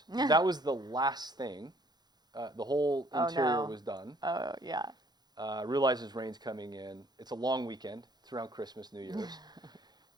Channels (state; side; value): late; left; 0.20 ms